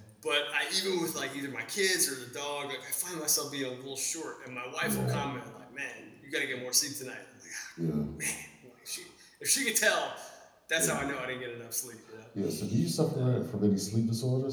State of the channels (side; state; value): both; identical; correlation 1.00